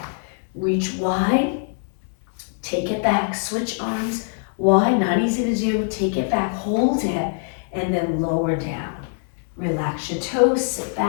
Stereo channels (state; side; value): silent; right; 61 dB below the other